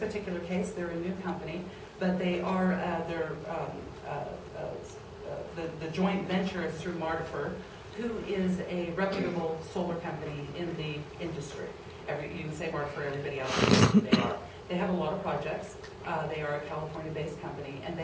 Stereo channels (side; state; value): both; identical; correlation 1.00